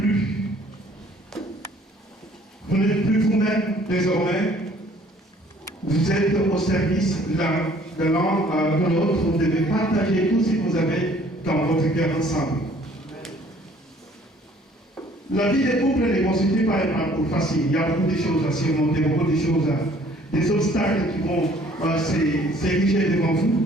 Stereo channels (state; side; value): normal; both; correlation 0.57